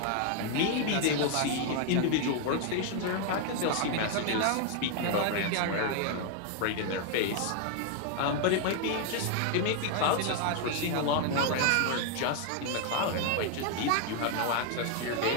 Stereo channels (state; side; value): different; both; correlation 0.00